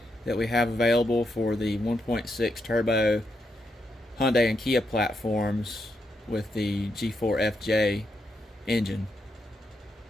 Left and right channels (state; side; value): normal; both; correlation 0.82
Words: that we have available for the 1.6 turbo Hyundai and Kia platforms with the G4 FJ engine.